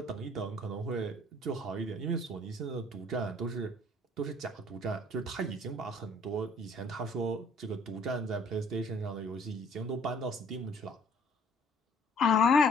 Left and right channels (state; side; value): normal; both; correlation 0.57